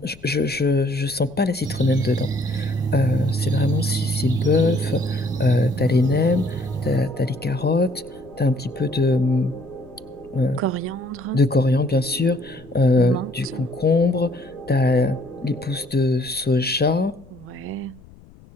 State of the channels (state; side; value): noise; left; rumble, 24 dB below the sound